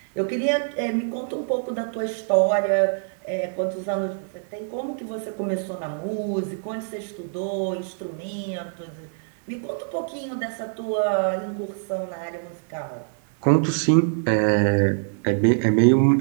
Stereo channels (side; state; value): left; silent; digital silence